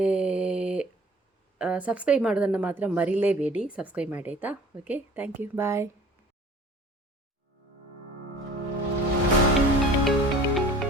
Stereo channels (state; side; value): normal; both; correlation 0.48